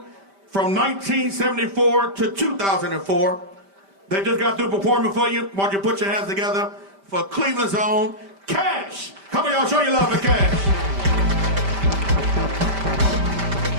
from 1974 to 2004. They just got through performing for you. Why don't you put your hands together for Cleveland's own Cash. Come on, y'all, show your love for Cash.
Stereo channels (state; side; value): late; left; 5.1 ms